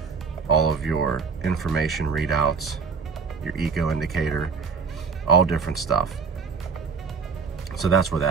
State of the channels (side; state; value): left; quieter; 5.5 dB